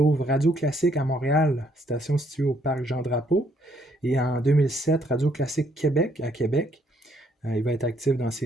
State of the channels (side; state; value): both; normal; correlation 0.69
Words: Radio Classique à Montréal, station située au parc Jean-Drapeau. Et en 2007, Radio Classique Québec à Québec. Il va être actif dans